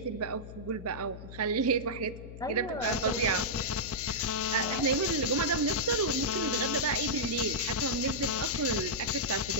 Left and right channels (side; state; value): left; noise; hum, 13 dB below the sound